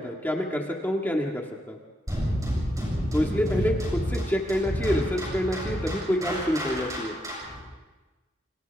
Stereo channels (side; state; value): both; normal; correlation 0.81